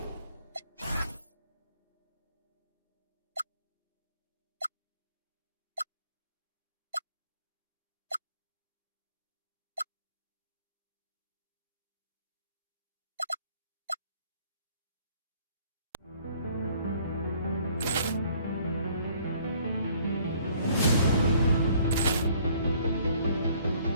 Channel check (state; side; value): inverted; both; correlation -0.59